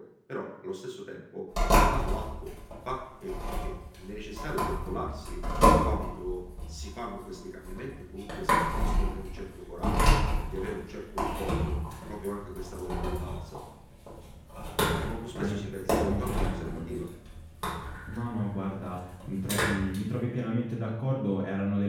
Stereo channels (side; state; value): both; identical; correlation 1.00